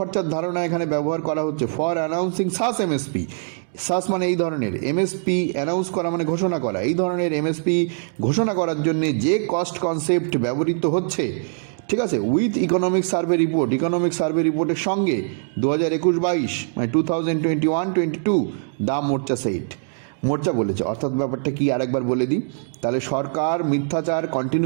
ধারণা এখানে ব্যবহার করা হচ্ছে, ফর অ্যানাউন্সিং সাস এমএসপি, সাস মানে এই ধরনের, এমএসপি অ্যানাউন্স করা মানে ঘোষণা করা, এই ধরনের এমএসপি ঘোষণা করার জন্য যে কস্ট কনসেপ্ট ব্যবহৃত হচ্ছে, ঠিক আছে, উইথ ইকোনমিক সার্ভে রিপোর্টের সঙ্গে 2021-22 মানে 2021-22 দা মোর্চা বলেছে। অর্থাৎ ব্যাপারটা কি আরেকবার বলে দিই, তাহলে সরকার মিথ্যাচার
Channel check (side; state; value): left; silent; digital silence